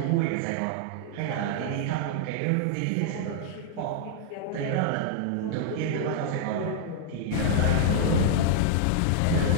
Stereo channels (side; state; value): both; different; correlation -0.01